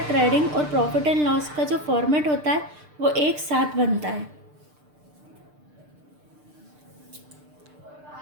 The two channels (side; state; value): left; late; 6.7 ms